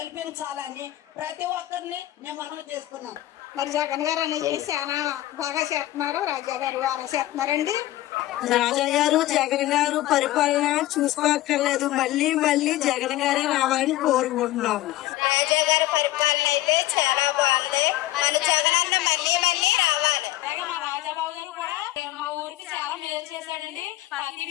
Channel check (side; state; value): right; quieter; 15.9 dB